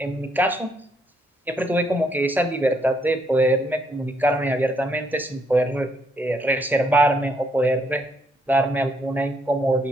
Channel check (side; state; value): both; normal; correlation 0.73